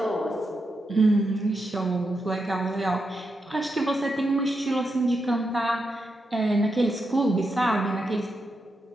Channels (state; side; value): normal; both; correlation 0.85